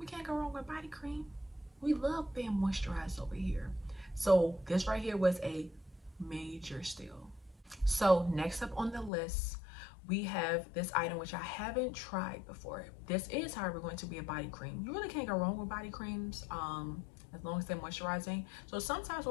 can't go wrong with body cream. We love being moisturized over here. So this right here was a major steal. So next up on the list, we have this item which I haven't tried before. This is, however, going to be a body cream. You really can't go wrong with body creams as long as they're moisturizing. So sometimes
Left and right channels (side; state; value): right; drops out; at 9.1 s